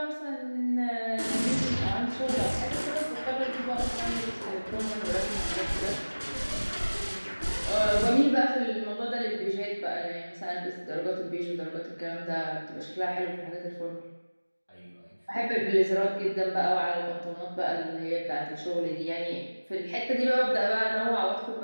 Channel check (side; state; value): both; inverted; correlation -1.00